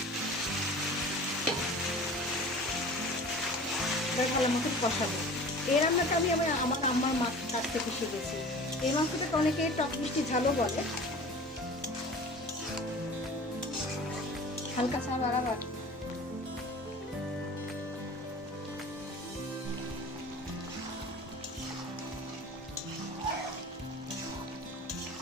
ভালো মতো কষাবো। এই রান্নাটা আমি আমার আম্মার মাছ কাছ থেকে শিখেছি। এই মাংসটাকে অনেকে টক মিষ্টি ঝালও বলে। হালকা চা বাড়াবার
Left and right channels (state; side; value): normal; both; correlation 0.41